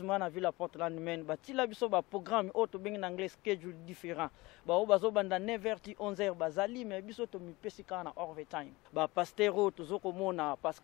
na ville à Portland Maine batila biso ba programme auto bengi en anglais schedule différent ba o bazo banda 9h ti 11h bazali mais biso to mi pesika na overtime ba pasteur to zoko mona parce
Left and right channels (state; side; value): quieter; right; 21.8 dB